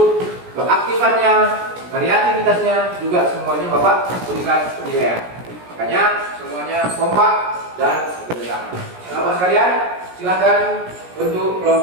keaktifannya, kreativitasnya juga semuanya Bapak berikan penilaian. Makanya semuanya kompak dan bekerjasama. Bapak sekalian, silakan bentuk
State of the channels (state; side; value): late; left; 17 ms